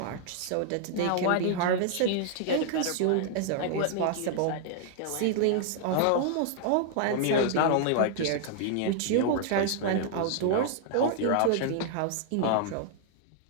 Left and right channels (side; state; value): both; different; correlation -0.01